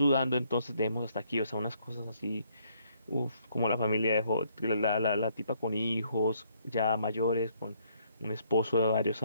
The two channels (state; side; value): inverted; both; correlation -0.68